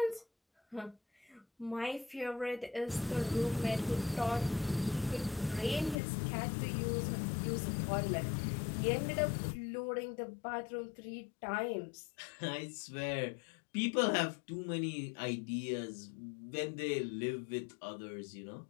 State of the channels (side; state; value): right; drops out; at 6.0 s